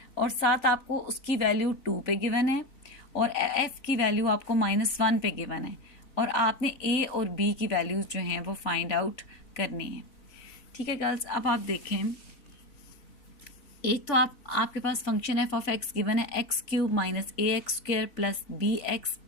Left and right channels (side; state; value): right; late; 3.4 ms